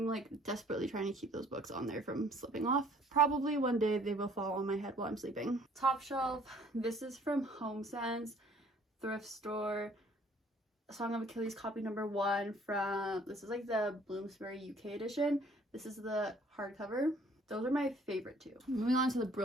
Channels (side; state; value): both; normal; correlation 0.57